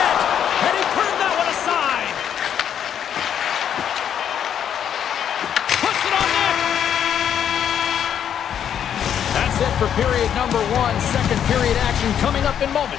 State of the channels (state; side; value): quieter; right; 9.1 dB